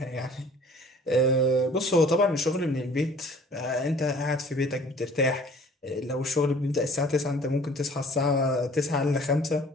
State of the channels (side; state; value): both; normal; correlation 0.51